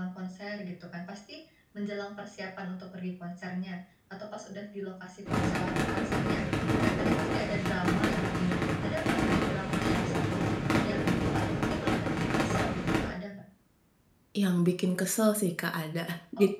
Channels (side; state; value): both; identical; correlation 1.00